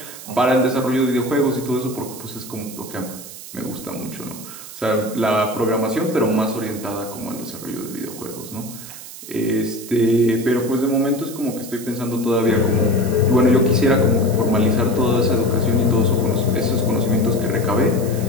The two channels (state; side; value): noise; right; hiss, 14 dB below the sound